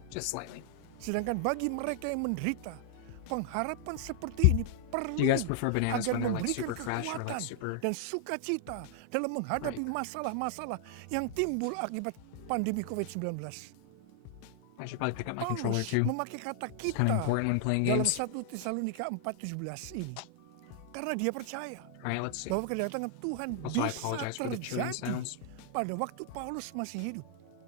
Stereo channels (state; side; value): different; both; correlation 0.00